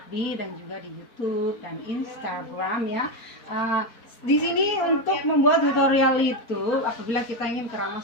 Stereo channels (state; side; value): late; right; 4.4 ms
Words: dan juga di YouTube dan Instagram ya. Di sini untuk membuat tutorial itu, apabila kita ingin